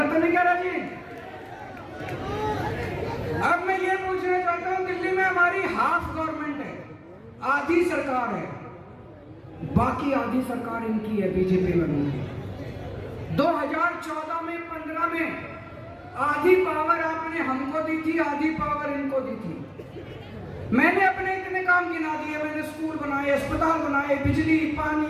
तो नहीं कह रहा जी? अब मैं ये पूछना चाहता हूँ, दिल्ली में हमारी हाफ गवर्नमेंट है, आधी सरकार है, बाकी आधी सरकार इनकी है, बीजेपी वालों की। 2014 में 15 में आधी पावर आपने हमको दी थी, आधी पावर इनको दी थी। मैंने अपने इतने काम गिना दिए, मैंने स्कूल बनाए, अस्पताल बनाए, बिजली,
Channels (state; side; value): identical; both; correlation 1.00